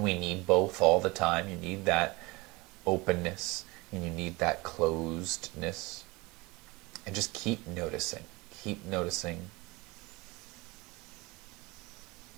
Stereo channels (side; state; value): left; quieter; 23.8 dB